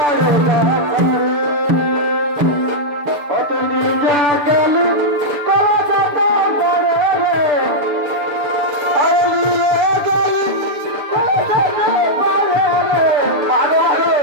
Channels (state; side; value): late; left; 6.7 ms